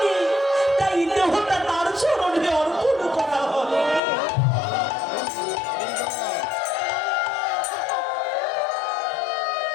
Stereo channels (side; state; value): right; drops out; at 4.0 s